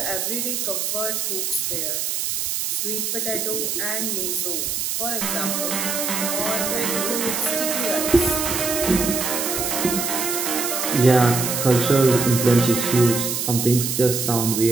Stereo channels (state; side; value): noise; right; hiss, 1 dB below the sound